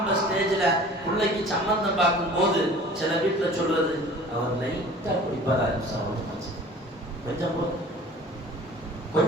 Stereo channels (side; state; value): both; normal; correlation 0.45